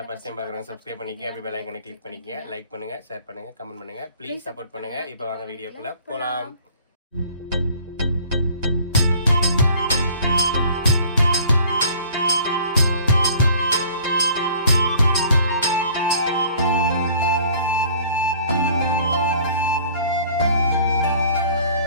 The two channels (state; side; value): inverted; both; correlation -0.51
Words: ஃபர்ஸ்ட் டைம் பார்க்குறவங்க சப்ஸ்கிரைப் பண்ணிக்கங்க, அப்படி பெல் ஐகானை கிளிக் பண்ணிக்கங்க, லைக் பண்ணுங்க, ஷேர் பண்ணுங்க, கமெண்ட் பண்ணுங்க, ப்ளீஸ் சப்போர்ட் பண்ணுங்க. இப்போ வாங்க வீடியோக்குள்ள போலாம்.